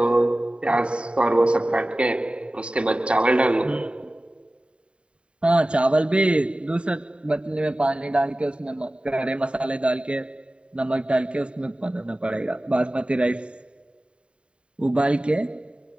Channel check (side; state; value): left; late; 0.055 ms